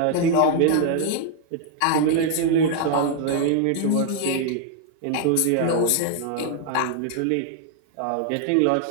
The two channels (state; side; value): different; both; correlation 0.00